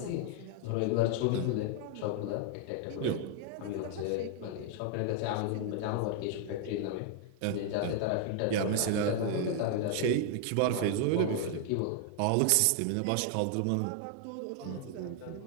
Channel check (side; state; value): both; different; correlation 0.00